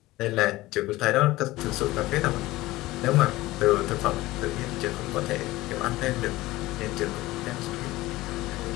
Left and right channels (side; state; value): right; quieter; 18.4 dB